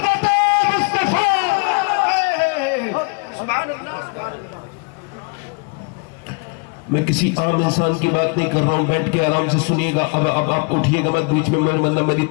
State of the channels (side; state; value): right; quieter; 33.2 dB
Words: میں کسی عام انسان کی بات نہیں کر رہا ہوں، بیٹھ کے آرام سے سنیے گا. اب آپ اٹھیے گا مت بیچ میں، میری